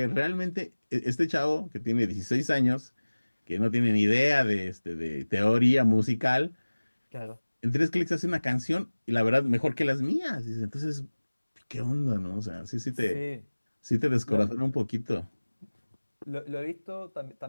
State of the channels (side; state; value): both; inverted; correlation -1.00